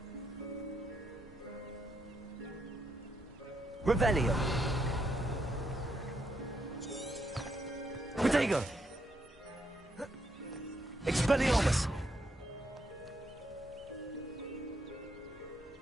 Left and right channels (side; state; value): both; normal; correlation 0.78